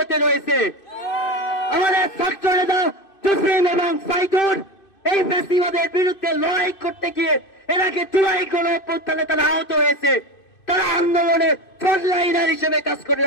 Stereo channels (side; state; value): right; late; 2.6 ms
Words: রয়েছে। আমাদের ছাত্র নেতা জসিম এবং সাইদুর এই ফ্যাসিবাদের বিরুদ্ধে লড়াই করতে গিয়ে এনাকে জুলাই গণঅভ্যুত্থানে তারা আহত হয়েছে, তারা আন্দোলনে ফ্রন্টলাইনার হিসেবে কাজ করে